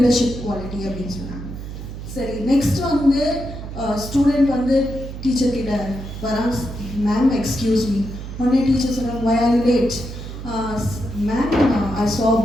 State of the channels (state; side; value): noise; right; hum, 9 dB below the sound